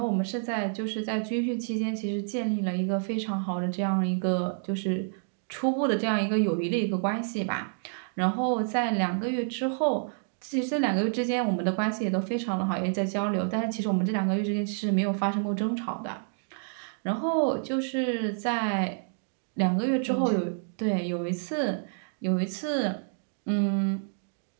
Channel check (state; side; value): silent; left; digital silence